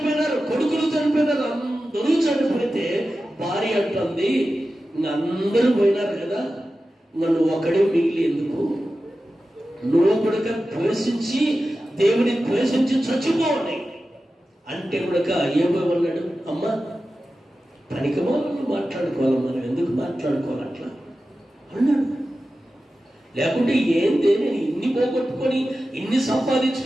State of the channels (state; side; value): normal; both; correlation 0.93